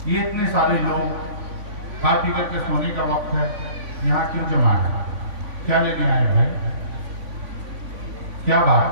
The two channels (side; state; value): left; late; 3.5 ms